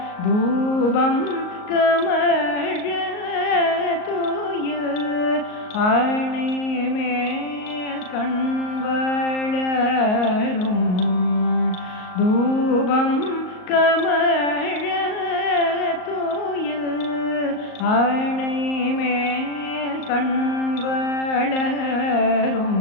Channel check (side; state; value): right; late; 38 ms